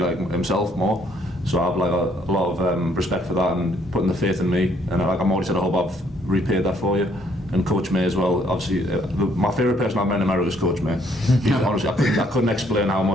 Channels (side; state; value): both; normal; correlation 0.67